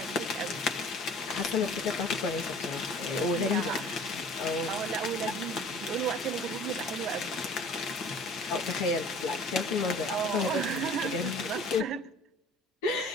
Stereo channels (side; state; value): both; normal; correlation 0.47